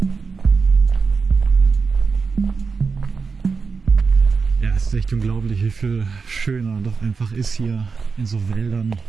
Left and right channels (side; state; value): left; quieter; 4.9 dB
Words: Es ist echt unglaublich, wie viel schöner doch einfach ist hier in so Wäldern.